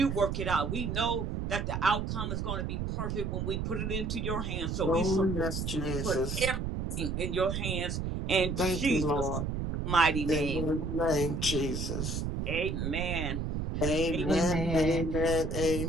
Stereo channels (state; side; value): noise; right; rumble, 2 dB below the sound